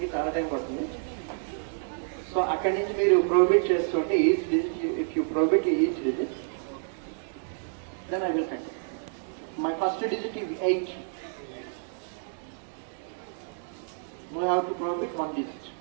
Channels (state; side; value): silent; left; 59 dB below the other